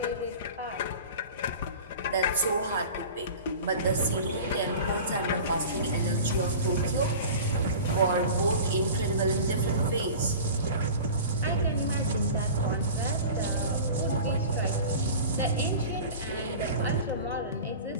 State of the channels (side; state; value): both; inverted; correlation -0.37